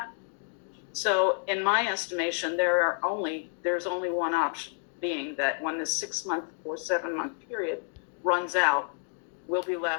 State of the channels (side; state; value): right; silent; 55 dB below the other